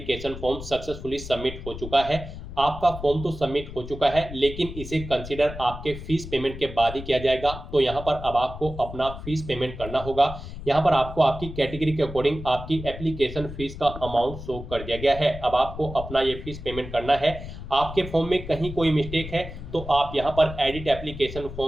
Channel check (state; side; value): noise; left; rumble, 11 dB below the sound